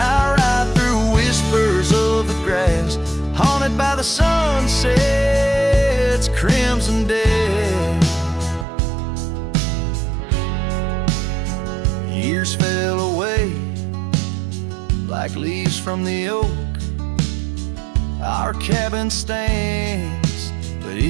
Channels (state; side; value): drops out; left; at 8.7 s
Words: I ride through whispers of the grass, haunted by the sunset's crimson death. Years fell away like leaves from the oak. Our cabin stands, but